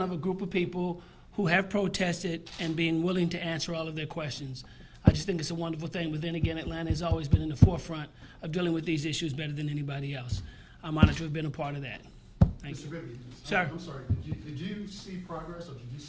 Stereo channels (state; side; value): identical; both; correlation 1.00